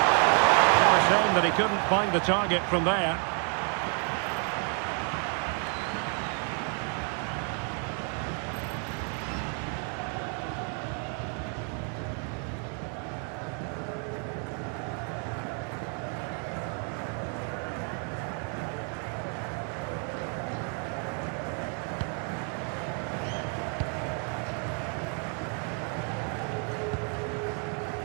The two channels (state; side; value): quieter; left; 39.8 dB